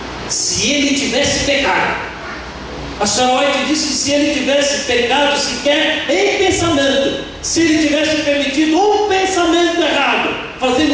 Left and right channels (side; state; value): both; identical; correlation 1.00